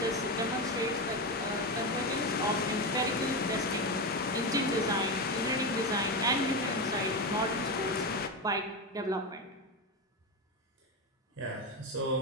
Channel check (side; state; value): both; normal; correlation 0.15